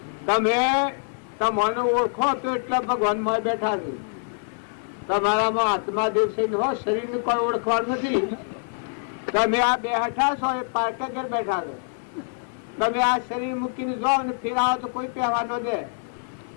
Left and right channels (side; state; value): right; silent; 62 dB below the other